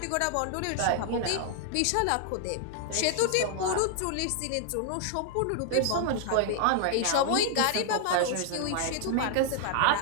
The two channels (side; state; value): both; different; correlation 0.00